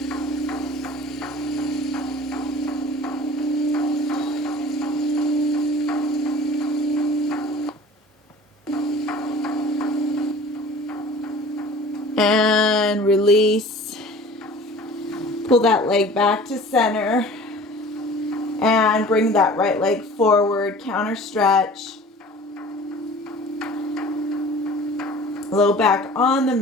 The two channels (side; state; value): both; normal; correlation 0.44